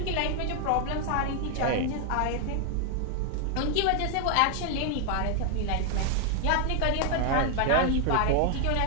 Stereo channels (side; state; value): both; different; correlation 0.00